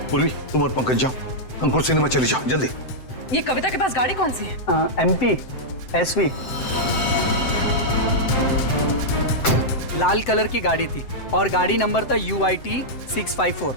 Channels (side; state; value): right; late; 7.8 ms